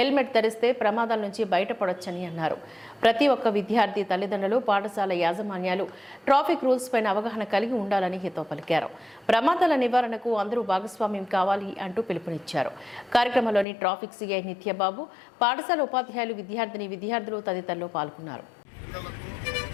ధరిస్తే ప్రమాదాల నుంచి బయటపడొచ్చని అన్నారు. ప్రతి ఒక్క విద్యార్థి తల్లిదండ్రులు, పాఠశాల యాజమాన్యాలు ట్రాఫిక్ రూల్స్ పైన అవగాహన కలిగి ఉండాలని హితవు పలికారు. ప్రమాదాల నివారణకు అందరూ భాగస్వామ్యం కావాలి అంటూ పిలుపునిచ్చారు. కార్యక్రమంలోని ట్రాఫిక్ సిఐ నిత్యబాబు, పాఠశాల ఉపాధ్యాయులు, విద్యార్థులు తదితరులు పాల్గొన్నారు.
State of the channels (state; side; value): drops out; right; at 13.7 s